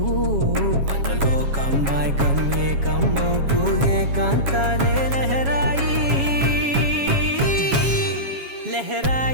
మనలో కమ్మాయికం ఏకమవుతూ ఏకాంతాలే లహరాయి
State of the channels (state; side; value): late; left; 7.3 ms